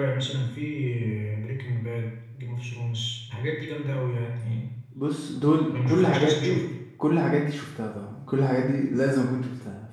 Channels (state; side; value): identical; both; correlation 1.00